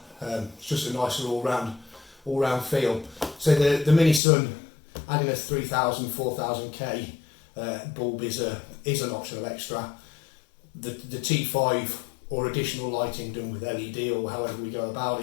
It's just a nicer all-round feel. So the MiniSun, adding a 3000, 4000K bulb is an optional extra. The T5 or additional lighting done with LED or however we go about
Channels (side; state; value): right; drops out; at 4.2 s